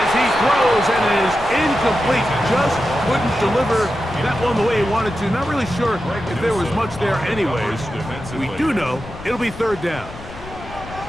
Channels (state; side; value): noise; left; rumble, 15 dB below the sound